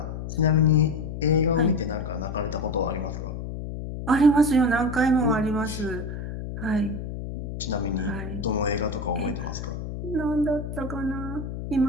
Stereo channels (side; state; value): left; noise; hum, 7 dB below the sound